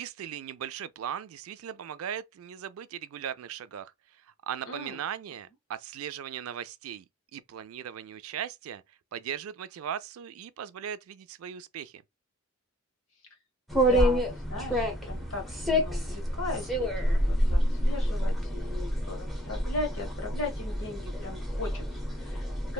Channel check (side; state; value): both; normal; correlation 0.56